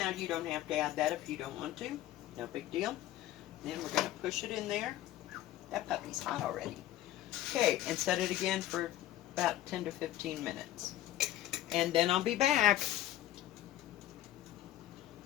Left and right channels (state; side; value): quieter; right; 13.8 dB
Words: you don't have to add that if you don't want to. No big deal. And then we're going to push it in there. That puppy's hot already. Okay, and set it again for about 10 to 15 minutes. And then I'll be back.